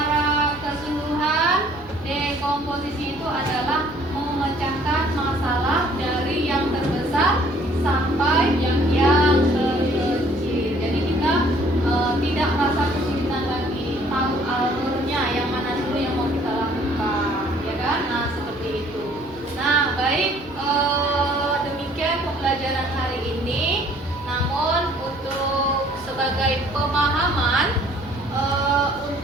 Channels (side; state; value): right; noise; hum, 26 dB below the sound